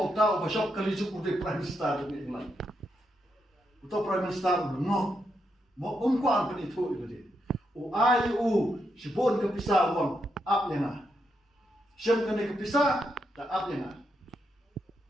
uta ba shop kali juk utai Prime Minister jong England. Uta Prime Minister no. Mo kuan pen itu dia. Ai sibon ke pisah wang up yang Siam kena kepisah, tak apa yang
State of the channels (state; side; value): normal; both; correlation 0.82